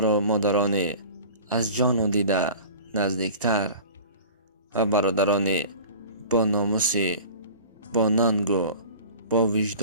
و مادران از جان و دیده نزدیکتر و برادران با ناموس، با ننگ و با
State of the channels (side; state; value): both; inverted; correlation -0.40